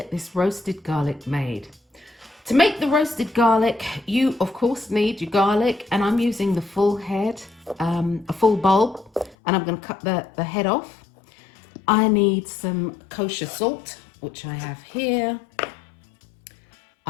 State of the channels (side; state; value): right; drops out; at 9.3 s